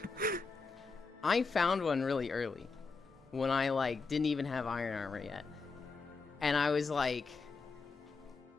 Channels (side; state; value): right; quieter; 4.4 dB